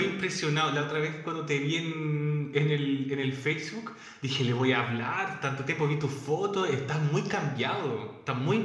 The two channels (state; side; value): identical; both; correlation 1.00